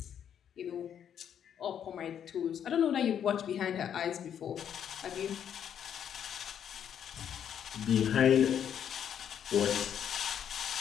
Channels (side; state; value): right; quieter; 9.0 dB